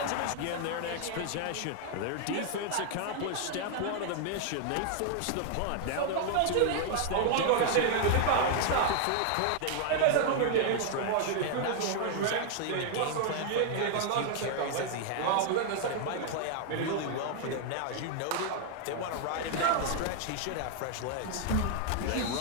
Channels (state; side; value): different; both; correlation 0.00